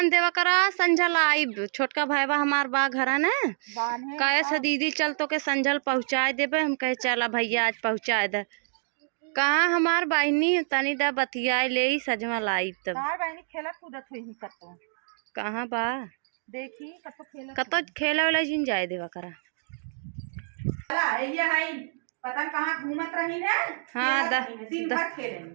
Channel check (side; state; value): left; silent; digital silence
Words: देवा करा, संझल आई छोटका भाईबा हमार बा घरा न बांधे कहे से दीदी चल तो के संझल पहुँचाए देबे। हम कहे चला भैया आज पहुँचाए दे। कहाँ हमार बहनी तनी दा बतियाए ले सजमा लाई तब। तार बहनी खेलत कूदत हुई ही कतो कहाँ बा देखी कतो खेले वाला जिन जाए देवा करा। ये है पता कहाँ घूमत रही ना। हाँ दिन भर खेले